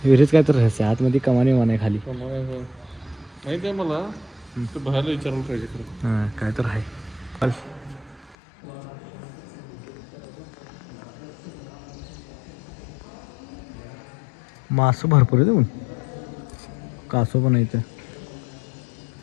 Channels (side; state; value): right; drops out; at 8.3 s